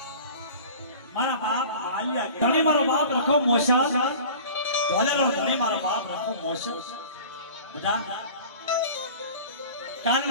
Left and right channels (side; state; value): both; inverted; correlation -0.41